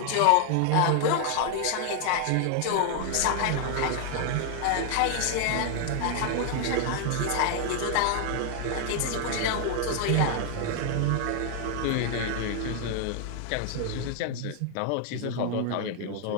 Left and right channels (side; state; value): both; different; correlation 0.00